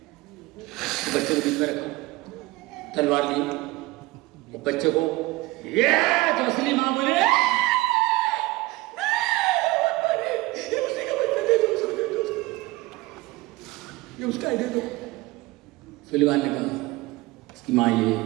बच्चे को बीच में रखा, तलवार ली, तो बच्चे को ये, तो असली माँ बोले ये उसका है, दे दो। सुलेमान ने कहा इसकी माँ ये,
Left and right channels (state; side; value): quieter; left; 20.4 dB